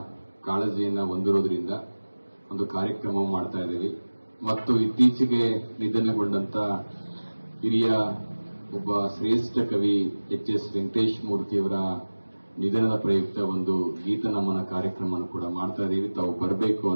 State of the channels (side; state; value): both; inverted; correlation -1.00